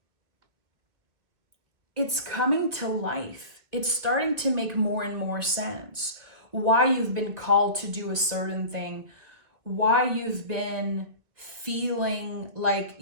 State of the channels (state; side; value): late; left; 1.9 ms